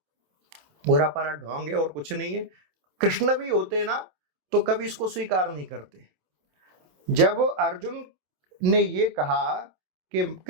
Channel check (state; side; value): late; left; 27 ms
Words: पूरा पारा ढोंग है और कुछ नहीं है। कृष्ण भी होते ना तो कभी इसको स्वीकार नहीं करते। जब अर्जुन ने ये कहा कि